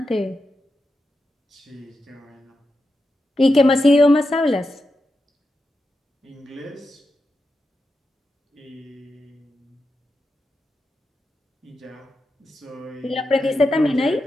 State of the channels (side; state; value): both; normal; correlation 0.88